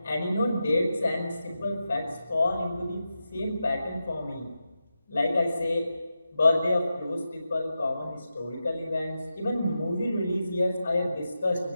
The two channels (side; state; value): both; inverted; correlation -0.90